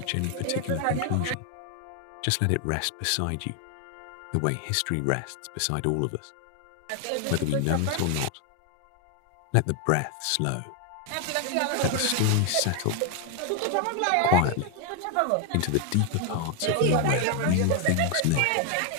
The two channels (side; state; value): both; different; correlation 0.01